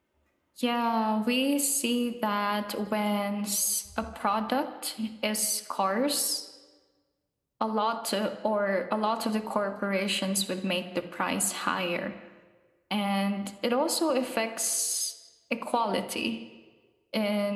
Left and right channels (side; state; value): both; identical; correlation 1.00